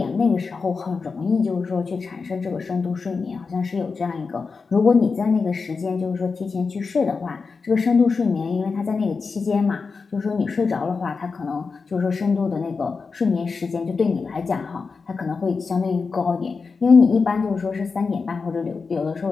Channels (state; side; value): quieter; right; 4.8 dB